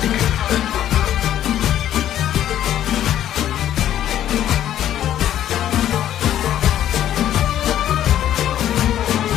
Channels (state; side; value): quieter; right; 11.5 dB